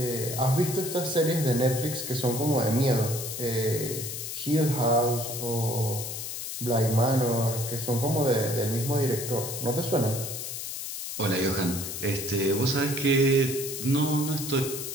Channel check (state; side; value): noise; left; hiss, 6 dB below the sound